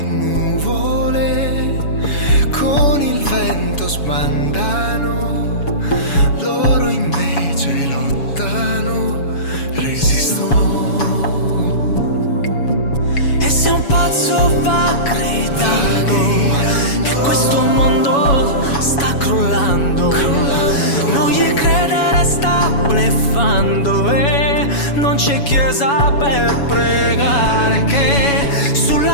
nuvole con il vento sbandano, loro invece lottano, resistono. E se un pazzo va gridando che questo mondo sta crollando, non gli credere, sta bleffando. E non c'è chiesa per pregare, che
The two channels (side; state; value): right; late; 7.1 ms